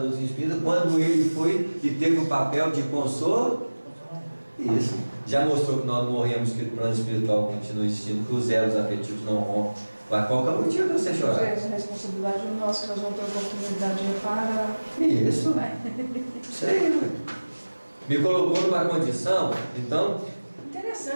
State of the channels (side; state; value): both; inverted; correlation -1.00